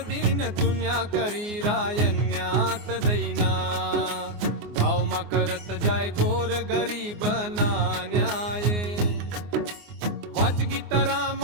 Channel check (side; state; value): left; late; 24 ms